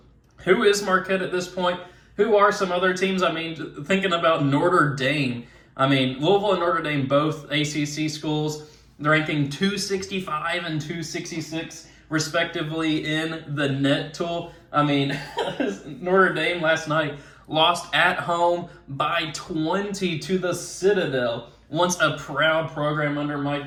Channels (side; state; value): both; identical; correlation 1.00